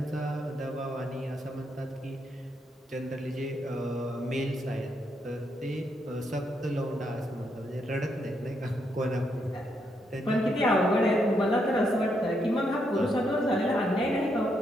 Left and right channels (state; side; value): normal; both; correlation 0.78